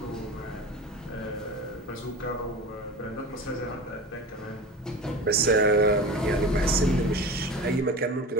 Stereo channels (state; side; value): normal; both; correlation 0.32